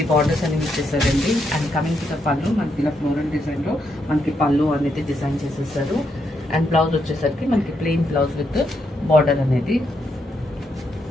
బార్డర్స్ అనేవి ఇచ్చేసారండి. అండ్ కమింగ్ టు ద పళ్ళు మనకి ఇలా ఫ్లోరల్ డిజైన్ లో మనకి పళ్ళు అనేది డిజైన్ చేసేసారు. అండ్ బ్లౌజ్ వచ్చేసరికి మనకి ప్లెయిన్ బ్లౌజ్ విత్ బార్డర్ అనేది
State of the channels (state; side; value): normal; both; correlation 0.79